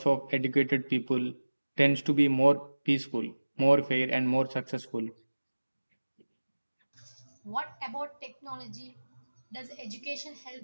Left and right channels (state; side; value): inverted; both; correlation -1.00